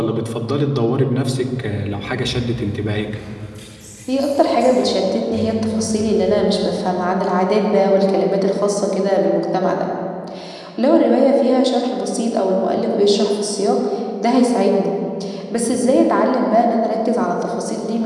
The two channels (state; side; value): identical; both; correlation 1.00